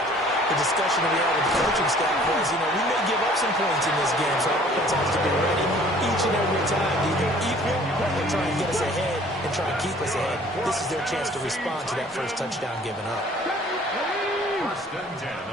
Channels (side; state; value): both; normal; correlation 0.53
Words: the discussion that we had with the coaching staff was, we may give up some points in this game, so our offense has to be ready each and every time, either equal or try and get us ahead and try and keep us ahead. This is their chance to respond to that first touchdown given up. 1st and 10